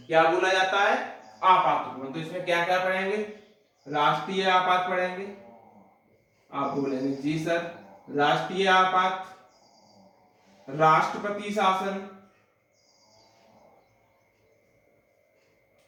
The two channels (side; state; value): both; identical; correlation 1.00